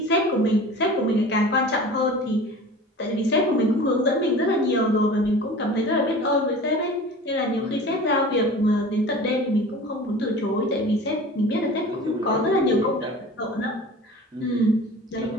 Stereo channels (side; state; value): both; normal; correlation 0.39